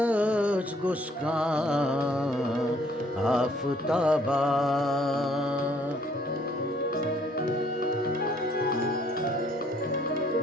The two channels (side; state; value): both; normal; correlation 0.63